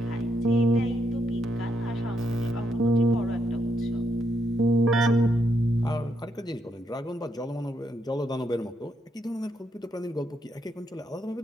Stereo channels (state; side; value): normal; both; correlation 0.78